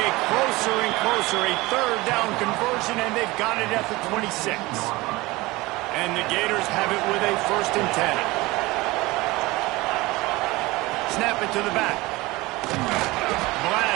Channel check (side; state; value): left; quieter; 21.1 dB